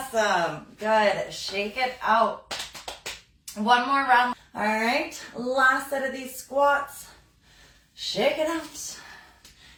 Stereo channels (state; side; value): identical; both; correlation 1.00